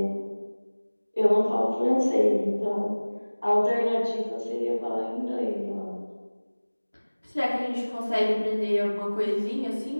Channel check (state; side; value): inverted; both; correlation -1.00